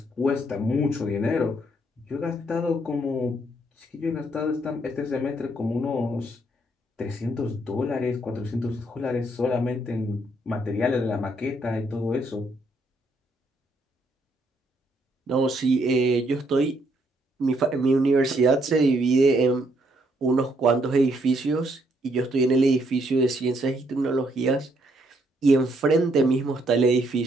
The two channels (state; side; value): normal; both; correlation 0.71